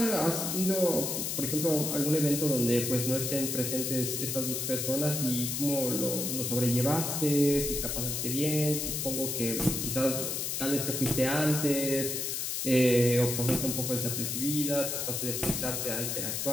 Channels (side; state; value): left; noise; hiss, 2 dB below the sound